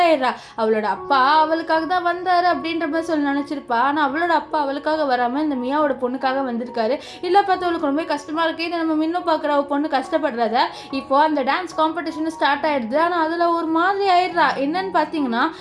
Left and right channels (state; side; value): identical; both; correlation 1.00